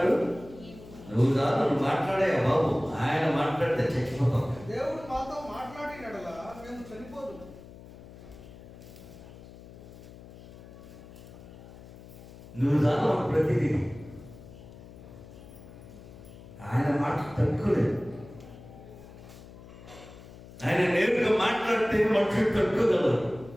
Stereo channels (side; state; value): left; noise; hum, 18 dB below the sound